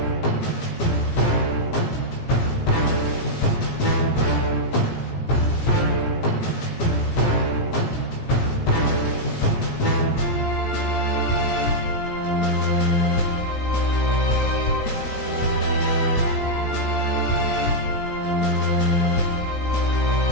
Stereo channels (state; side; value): late; right; 17 ms